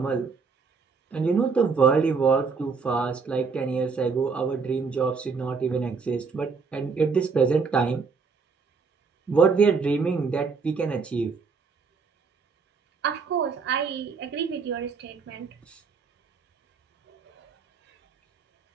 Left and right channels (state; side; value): quieter; left; 5.1 dB